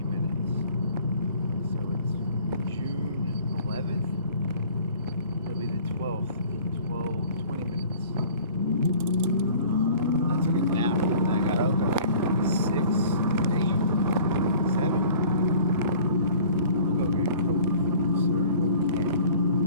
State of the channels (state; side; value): inverted; both; correlation -0.49